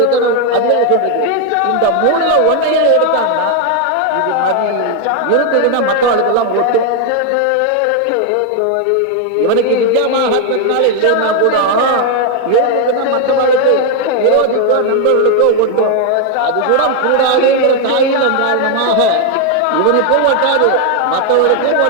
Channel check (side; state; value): both; different; correlation 0.01